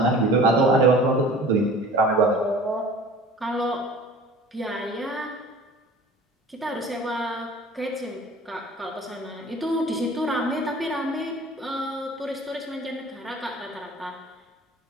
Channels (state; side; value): normal; both; correlation 0.44